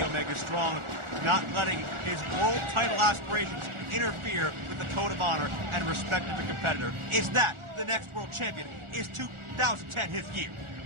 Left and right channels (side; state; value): left; late; 1.4 ms